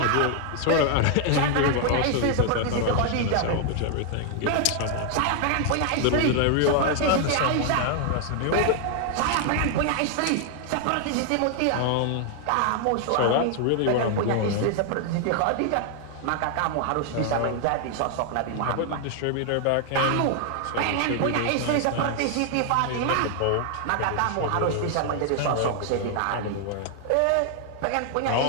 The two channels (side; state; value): both; different; correlation 0.00